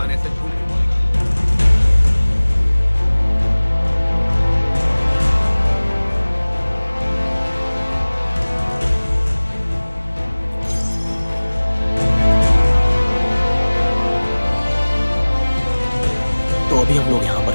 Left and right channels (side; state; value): both; inverted; correlation -1.00